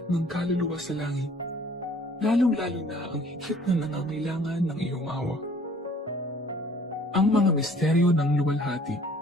ng kaluluwa sa langit, lalong-lalo na ang higit na nangangailangan ng iyong awa. Ang mga misteryo ng luwalhati.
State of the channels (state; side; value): normal; both; correlation 0.55